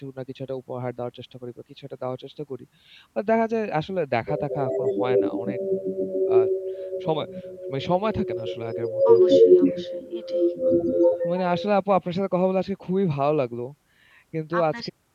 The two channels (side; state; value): both; identical; correlation 1.00